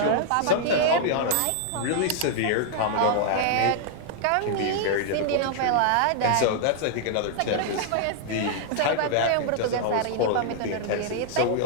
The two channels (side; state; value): both; different; correlation -0.01